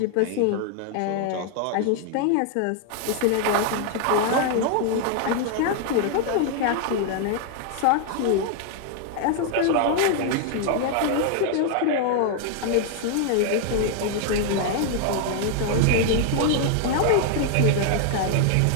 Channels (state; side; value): different; both; correlation 0.00